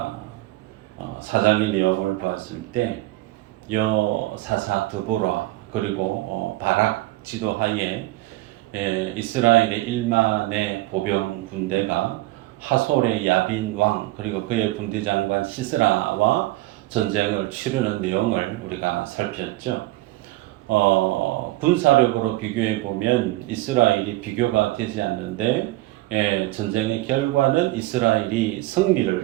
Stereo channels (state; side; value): quieter; left; 18.3 dB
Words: 사장의 내용을 보았을 때 여사사 드보라 그리고 바락 지도하에 이스라엘의 1만의 보병 군대가 하솔의 야빈 왕 그리고 그의 군대 장관 시스라와 전쟁을 치르는 내용을 우리가 살폈죠. 군사력으로 비교해 보면 이스라엘이 비교가 되지 않는데 전쟁의 결과는 이스라엘이